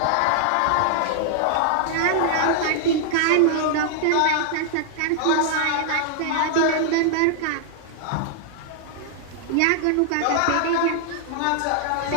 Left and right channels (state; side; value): different; both; correlation -0.01